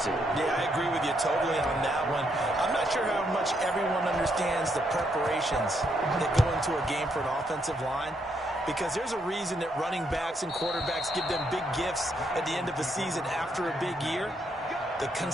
Yeah, I agree with you totally on that one. I'm not sure how much everyone understands the preparations that go into a game for an offensive line, because there's a reason that running backs and quarterbacks give them big gifts at the end of the season after a big year. The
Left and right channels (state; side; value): normal; both; correlation 0.76